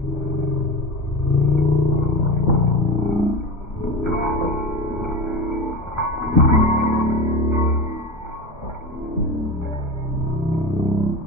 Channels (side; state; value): both; normal; correlation 0.26